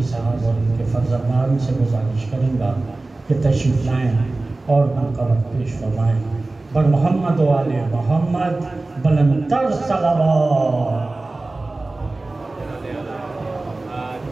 साहब और उनके फ़र्ज़ंदान से गुजारिश करूँगा कि तशरीफ़ लाएँ और मनक़बत पेश फरमाएँ। बर मोहम्मद वाले मोहम्मद बुलंदतर सलावत।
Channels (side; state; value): left; quieter; 3.1 dB